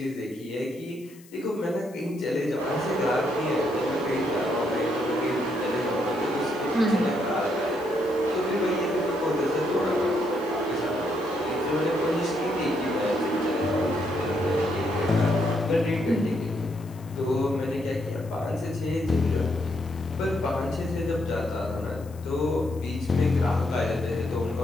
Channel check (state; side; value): noise; left; hiss, 25 dB below the sound